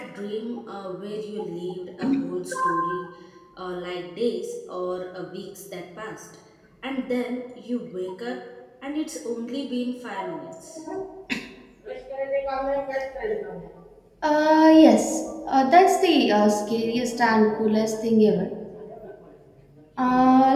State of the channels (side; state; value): both; identical; correlation 1.00